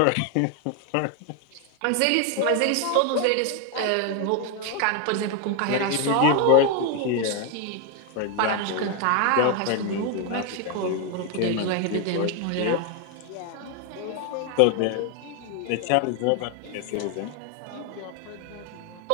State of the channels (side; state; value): both; different; correlation 0.01